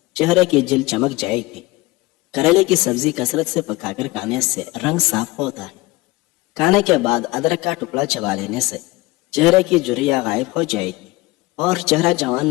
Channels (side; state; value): right; quieter; 20.8 dB